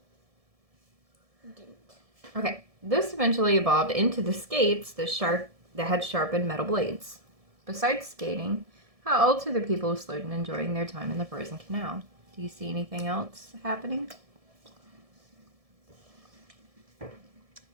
you didn't. Okay. This eventually evolved into the skates that had sharpened metal blades. Besides skating, how else are the people who slowed and enjoying their time in the frozen canal? Do you see anything else happening?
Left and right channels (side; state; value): left; late; 1.7 ms